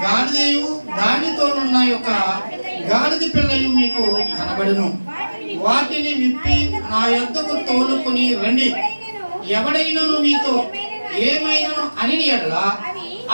గాడిదయు దానితోనున్న ఒక గాడిద పిల్లయు మీకు కనబడును. వాటిని విప్పి నా యొద్దకు తోలుకొని రండి. ఎవడైనను మీతో ఏమైనను అని ఎడల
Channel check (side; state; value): both; inverted; correlation -1.00